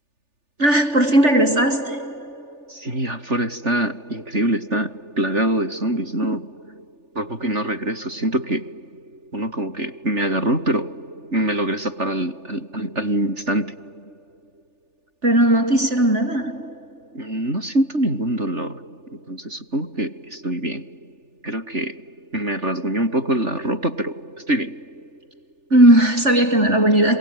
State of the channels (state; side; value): late; left; 3.4 ms